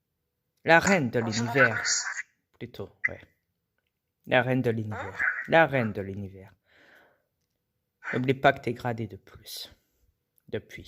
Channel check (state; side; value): identical; both; correlation 1.00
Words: La reine de l'univers, plutôt, ouais. La reine de l'univers. La reine de l'univers. N'oublie pas que t'es gradé de plus.